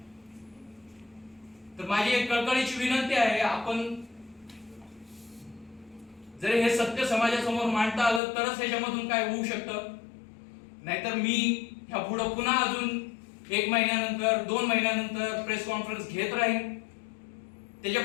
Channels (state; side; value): drops out; right; at 8.2 s